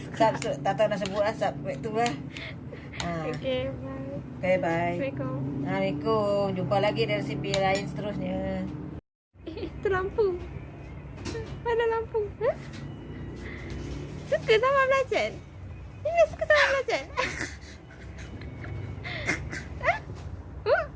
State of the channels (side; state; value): both; identical; correlation 1.00